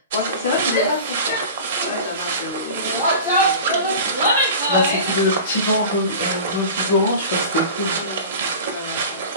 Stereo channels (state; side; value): inverted; both; correlation -0.35